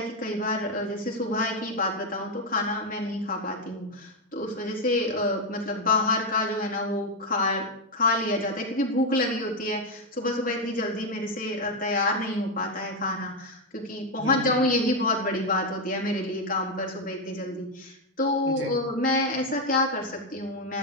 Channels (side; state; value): both; normal; correlation 0.05